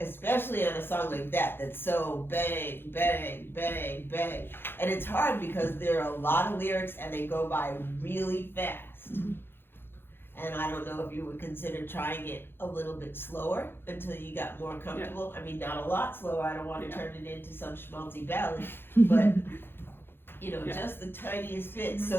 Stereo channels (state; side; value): late; right; 0.10 ms